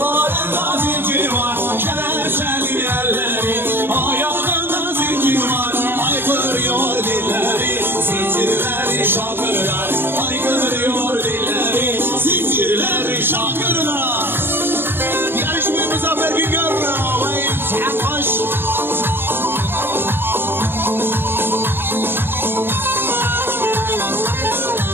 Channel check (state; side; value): late; left; 0.10 ms